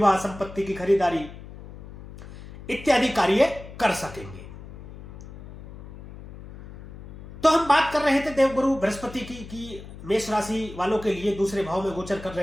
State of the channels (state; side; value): noise; left; hum, 15 dB below the sound